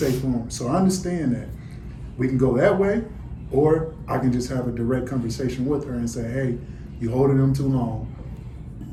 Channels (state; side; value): identical; both; correlation 1.00